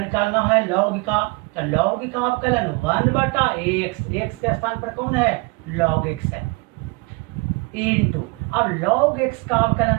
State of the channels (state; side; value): quieter; left; 28.7 dB